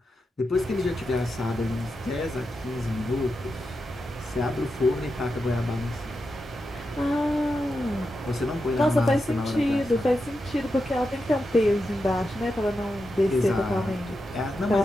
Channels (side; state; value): both; normal; correlation 0.88